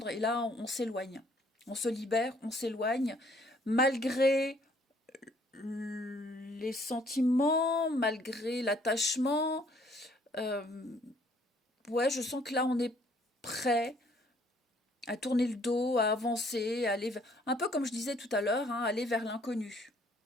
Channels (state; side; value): normal; both; correlation 0.62